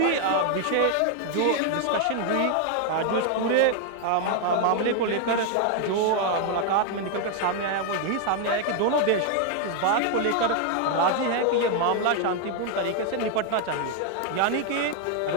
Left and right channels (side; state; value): both; different; correlation 0.00